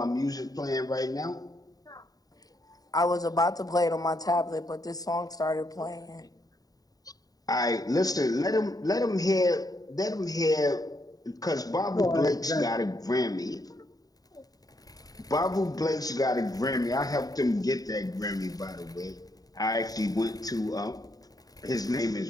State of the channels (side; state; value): right; late; 0.18 ms